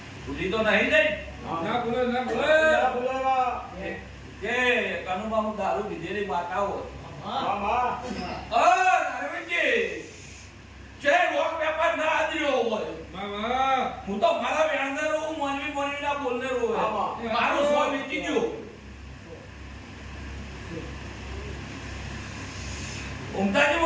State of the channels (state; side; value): identical; both; correlation 1.00